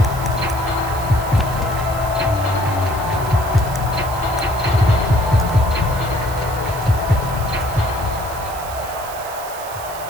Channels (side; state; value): right; noise; hiss, 14 dB below the sound